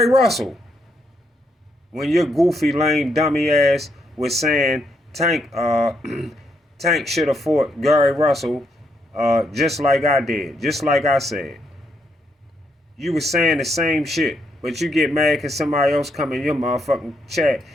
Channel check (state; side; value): normal; both; correlation 0.77